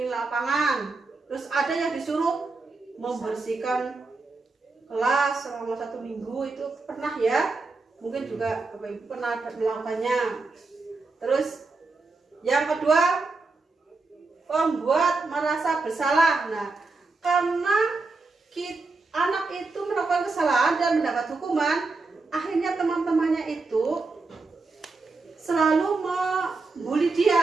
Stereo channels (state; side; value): quieter; left; 3.8 dB